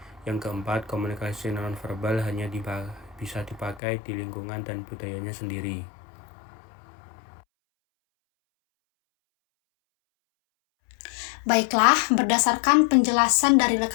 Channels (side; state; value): right; drops out; at 3.8 s